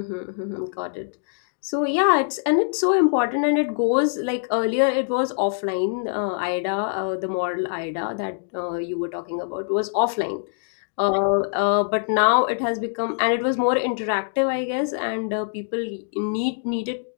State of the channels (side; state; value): right; silent; digital silence